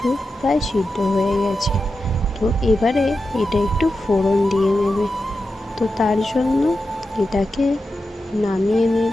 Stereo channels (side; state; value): both; normal; correlation 0.90